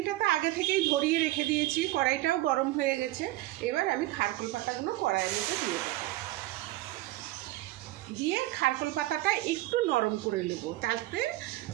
তো আগে থেকেই ধরিয়ে রেখে দিয়েছি, কড়াইটাও গরম হয়ে গেছে। এবার আমি খারকোল পাতাগুলো কড়াইয়ের মধ্যে দিয়ে খারকোল পাতাটা একটু নরম করে নেব, তাতে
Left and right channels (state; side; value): quieter; left; 17.4 dB